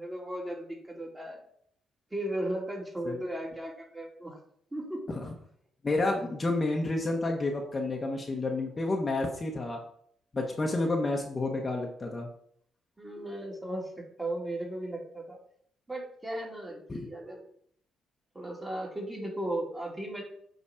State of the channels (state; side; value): normal; both; correlation 0.85